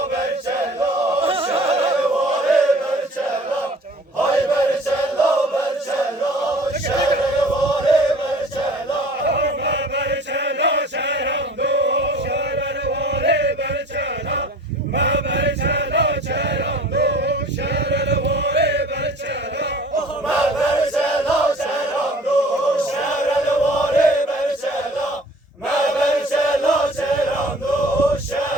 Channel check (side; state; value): both; normal; correlation 0.47